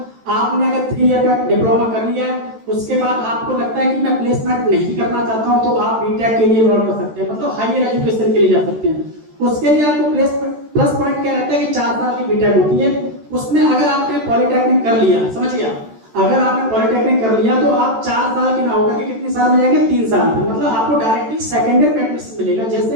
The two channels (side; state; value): left; late; 13 ms